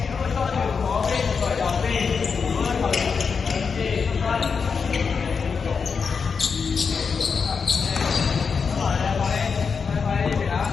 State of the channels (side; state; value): right; quieter; 5.6 dB